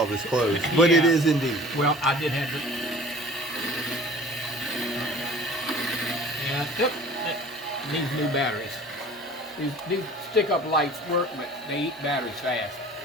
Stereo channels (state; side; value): normal; both; correlation 0.46